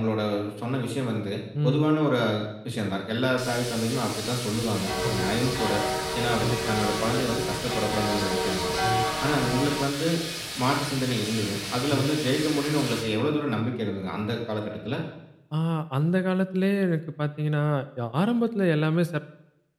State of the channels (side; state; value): both; identical; correlation 1.00